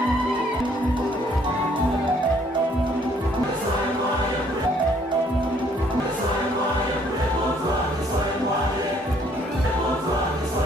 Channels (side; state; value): both; normal; correlation 0.64